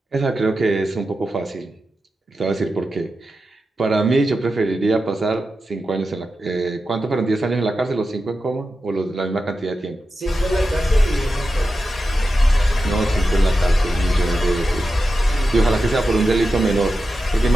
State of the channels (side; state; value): both; normal; correlation 0.91